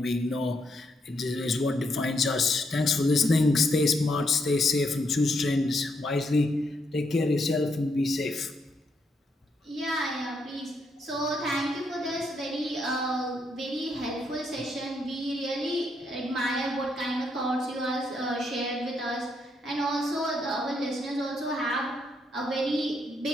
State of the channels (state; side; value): normal; both; correlation 0.77